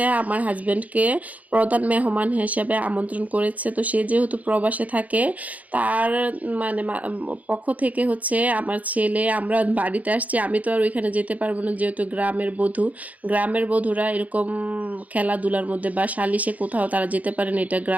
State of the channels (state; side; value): late; left; 0.074 ms